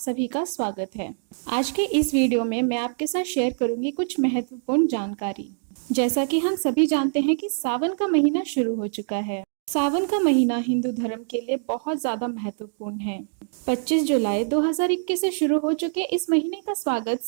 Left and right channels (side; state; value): left; silent; digital silence